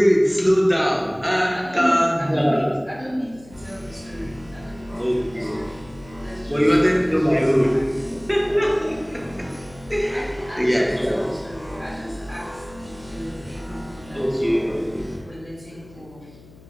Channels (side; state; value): left; noise; hum, 22 dB below the sound